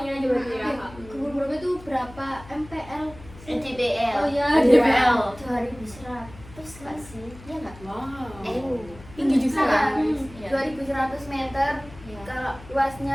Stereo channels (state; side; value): noise; left; hum, 19 dB below the sound